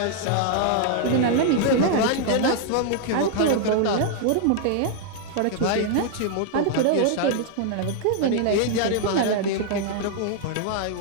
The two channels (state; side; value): different; both; correlation 0.00